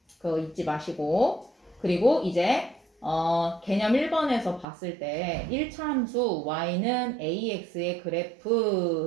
그거 잊지 마시고. 그리고 이제 개념 1번에서 봤을 때 1차 함수 y는 ax의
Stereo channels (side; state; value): left; drops out; at 4.7 s